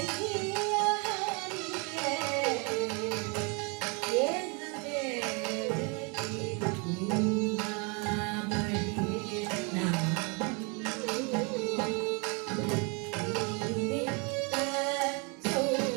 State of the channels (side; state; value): left; quieter; 32.4 dB